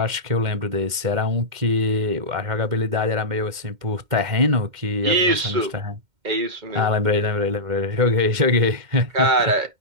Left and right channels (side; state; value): left; late; 2.1 ms